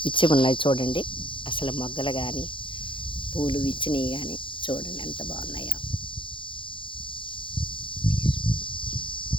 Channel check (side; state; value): right; late; 0.25 ms